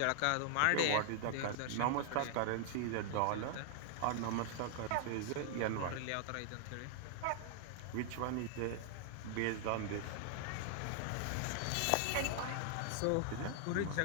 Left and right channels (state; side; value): different; both; correlation -0.01